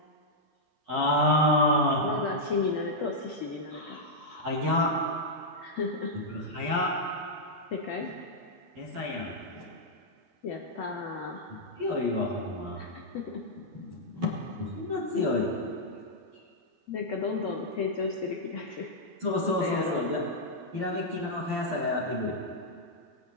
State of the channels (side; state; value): left; late; 12 ms